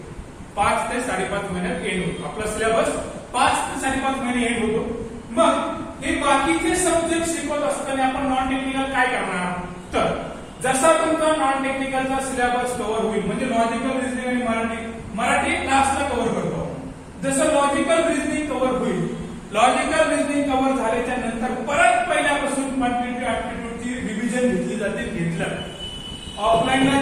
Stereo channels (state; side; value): identical; both; correlation 1.00